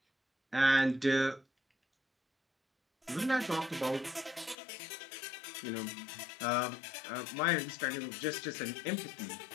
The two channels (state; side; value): drops out; right; at 4.5 s